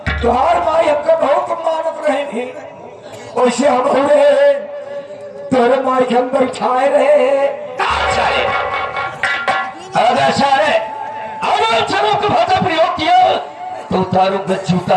तुहार माई हमको बहुत मानत रहेंगी। वैसे हम हो रहे तोरे माई के हम बैठाए रहे। साले अगर साले अगर चलो को भाषा प्रयोग किया तो उतारूंगा जूता,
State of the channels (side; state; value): both; identical; correlation 1.00